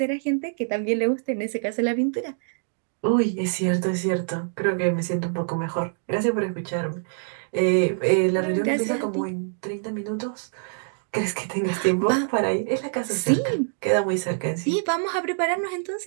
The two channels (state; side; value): silent; left; digital silence